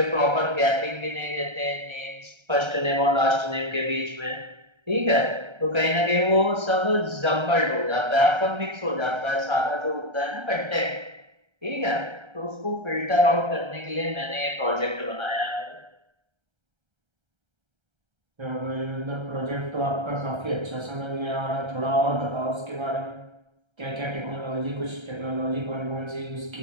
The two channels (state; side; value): late; left; 1.3 ms